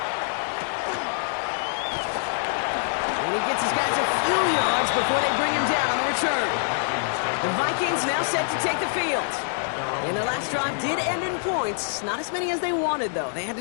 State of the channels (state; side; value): silent; right; 62 dB below the other